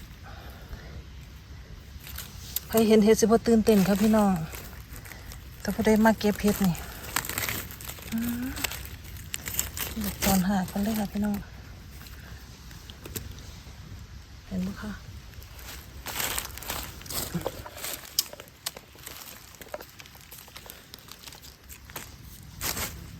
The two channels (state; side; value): identical; both; correlation 1.00